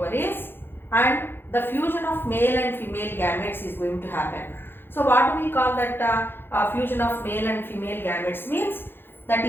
and the fusion of male and female gametes is going to happen. So what do we call that fusion of male and female gametes means? That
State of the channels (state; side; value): late; right; 0.10 ms